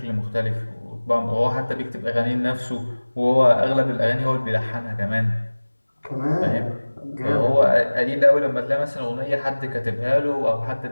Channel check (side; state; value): both; inverted; correlation -1.00